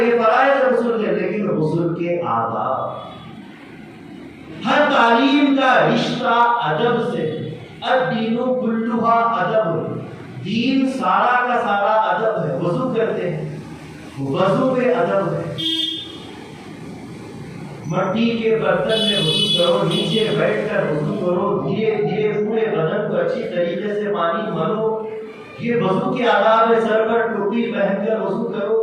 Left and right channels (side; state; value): both; identical; correlation 1.00